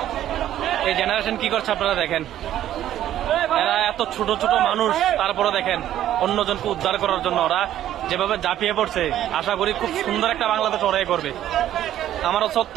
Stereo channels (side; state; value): left; quieter; 12.1 dB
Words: এই জেনারেশন কি করছে আপনারা দেখেন। এরা এত ছোট ছোট মানুষ, তারপরে দেখেন অন্যজনকে উদ্ধার করার জন্য ওরা যেভাবে ঝাঁপিয়ে পড়ছে। আশা করি খুব সুন্দর একটা বাংলাদেশ ওরাই করবে। আমার হচ্ছে